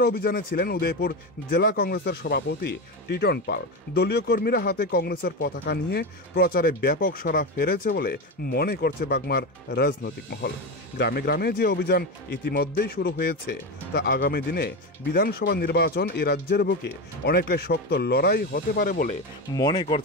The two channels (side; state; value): both; normal; correlation 0.17